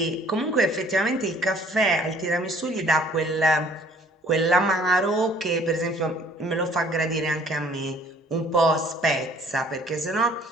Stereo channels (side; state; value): both; normal; correlation 0.57